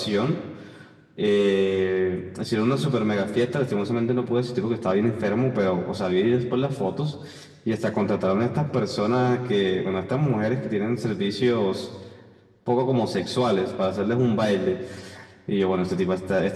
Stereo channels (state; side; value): identical; both; correlation 1.00